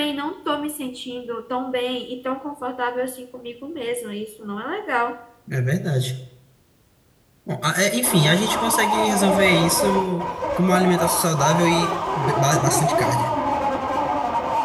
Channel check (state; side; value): identical; both; correlation 1.00